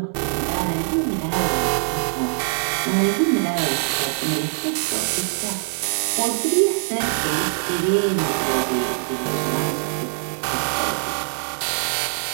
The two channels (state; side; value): silent; left; digital silence